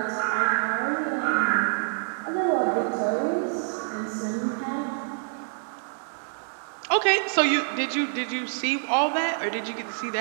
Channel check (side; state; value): left; silent; digital silence